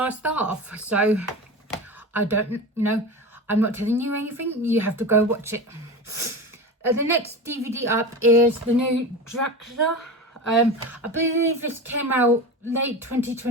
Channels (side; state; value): both; normal; correlation 0.27